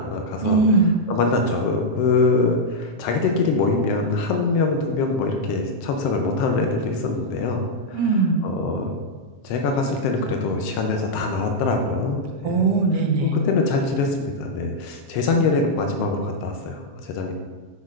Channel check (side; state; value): right; late; 7.6 ms